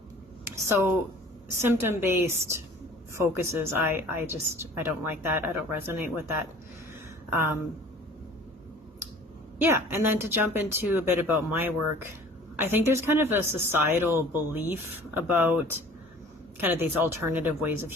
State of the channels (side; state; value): both; normal; correlation 0.47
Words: So symptom-based focuses, I don't like that. I don't resonate with that. And then to jump into a bit about my work, I think there's kind of a societal belief about kind of these alternative ways of